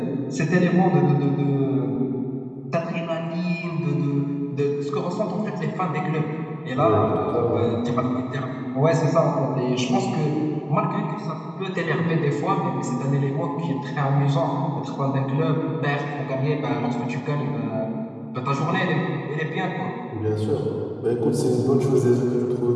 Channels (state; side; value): identical; both; correlation 1.00